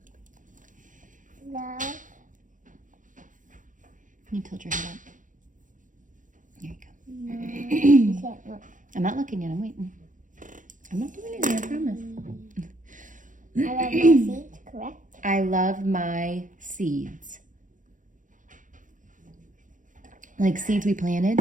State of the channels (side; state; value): left; late; 0.38 ms